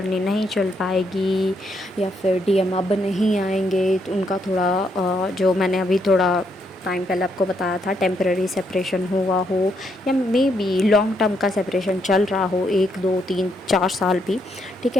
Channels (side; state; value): both; normal; correlation 0.76